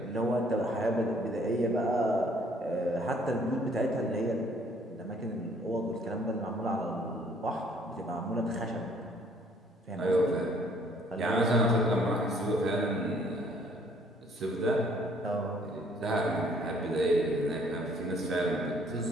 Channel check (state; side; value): normal; both; correlation 0.61